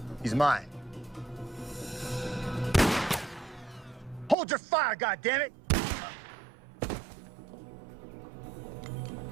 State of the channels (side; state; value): left; drops out; at 4.4 s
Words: He's mine. Hold your fire, goddammit!